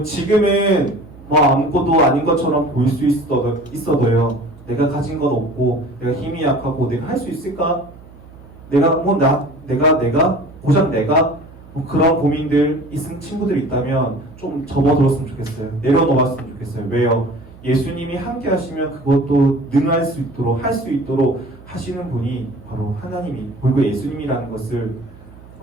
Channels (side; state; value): right; noise; hum, 21 dB below the sound